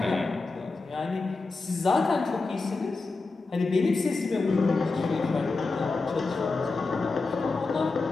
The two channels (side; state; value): right; quieter; 3.8 dB